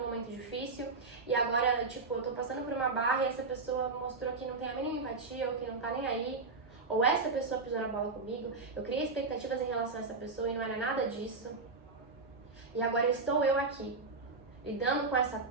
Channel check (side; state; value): left; quieter; 4.0 dB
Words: momento difícil e agora, tipo, eu tô passando por uma barra e essa pessoa mostrou que não tem a mínima empatia ou que não tá nem aí. Ou essa pessoa pisou na bola comigo, eu criei expectativas em relação a essa pessoa e não era nada disso. E agora estou eu aqui, lidando com essa